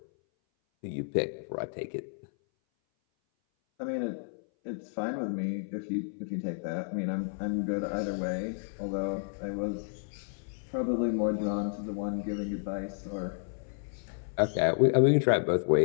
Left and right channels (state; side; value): silent; right; 57 dB below the other